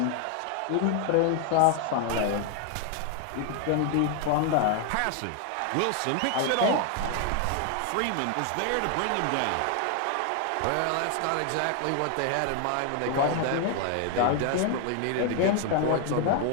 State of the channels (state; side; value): different; both; correlation 0.00